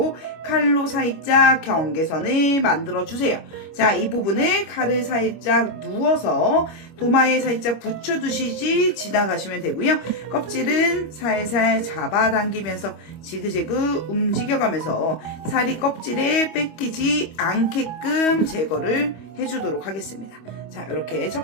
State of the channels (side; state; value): right; late; 25 ms